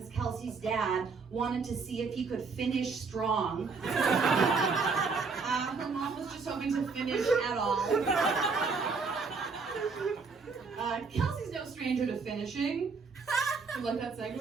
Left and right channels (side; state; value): left; quieter; 4.7 dB